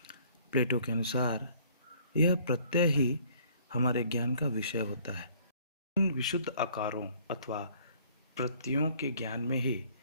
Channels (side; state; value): both; inverted; correlation -0.58